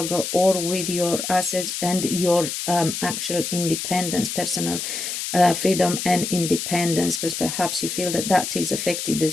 or with your assets and your actual independence, personal freedom and independence, because perhaps you feel that that is affected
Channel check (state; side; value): noise; left; hiss, 4 dB below the sound